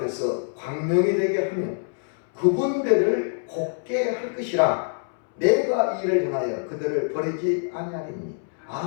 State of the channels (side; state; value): right; silent; 62 dB below the other